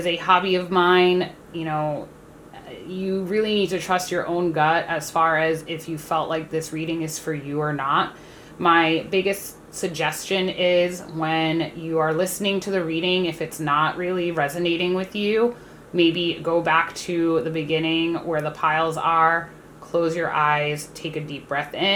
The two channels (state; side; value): identical; both; correlation 1.00